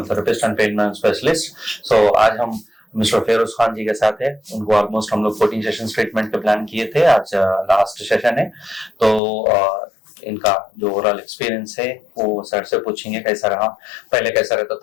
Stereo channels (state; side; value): drops out; right; at 9.2 s